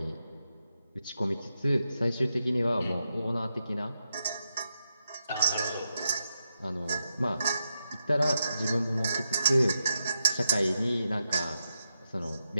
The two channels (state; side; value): inverted; both; correlation -0.87